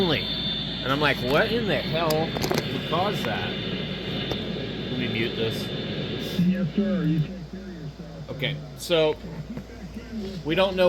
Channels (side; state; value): both; identical; correlation 1.00